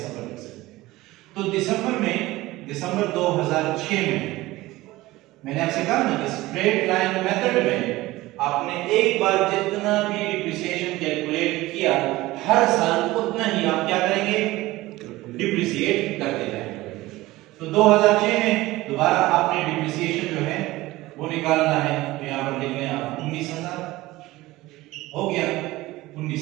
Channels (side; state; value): left; quieter; 18.5 dB